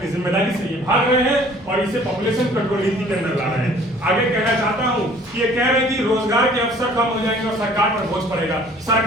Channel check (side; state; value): both; normal; correlation 0.53